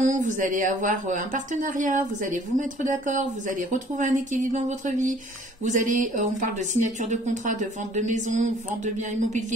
vous allez avoir un partenariat, vous allez vous mettre d'accord, vous allez retrouver un équilibre dans votre vie. Vous allez, on parle de signature de contrat, de vente de maison, vente de biens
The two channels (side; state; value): both; normal; correlation 0.56